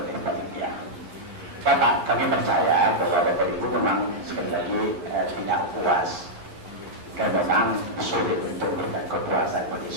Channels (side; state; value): left; late; 11 ms